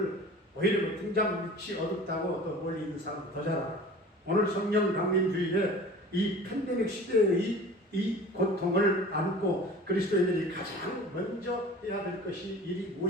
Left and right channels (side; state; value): both; normal; correlation 0.42